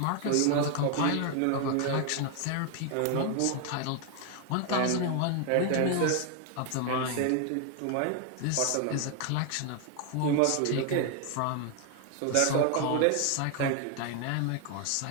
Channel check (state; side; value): different; both; correlation 0.00